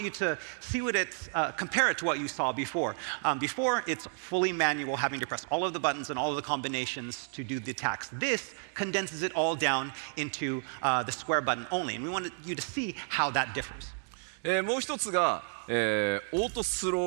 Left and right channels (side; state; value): left; silent; 57 dB below the other